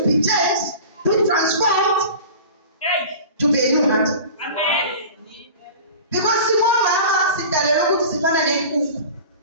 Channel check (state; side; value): inverted; both; correlation -0.37